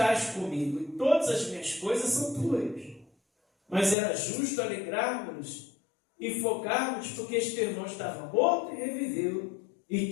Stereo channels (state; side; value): drops out; right; at 4.0 s